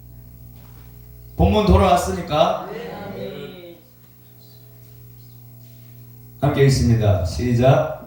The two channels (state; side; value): identical; both; correlation 1.00